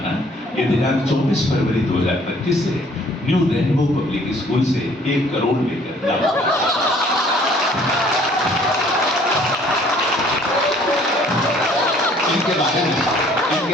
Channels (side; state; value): both; normal; correlation 0.57